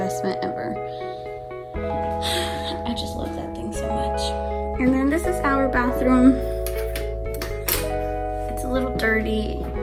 ever. I just love that thing so much. And then this is our bathroom. It's a little dirty.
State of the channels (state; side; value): identical; both; correlation 1.00